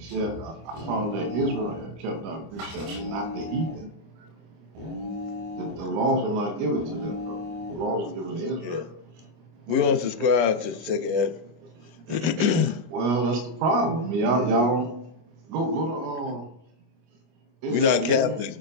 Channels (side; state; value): left; late; 25 ms